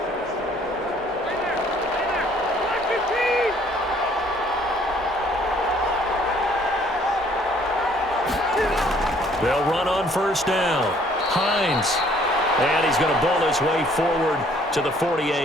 They'll run on 1st down. Hines. And he's going to bowl his way forward to the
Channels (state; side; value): normal; both; correlation 0.60